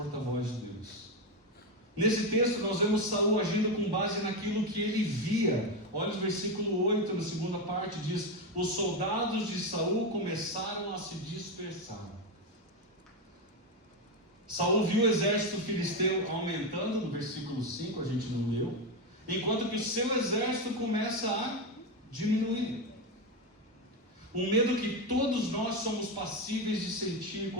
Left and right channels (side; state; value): both; normal; correlation 0.11